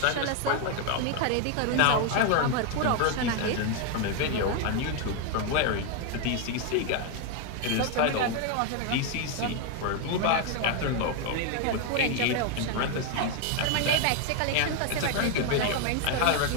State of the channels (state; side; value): different; both; correlation 0.01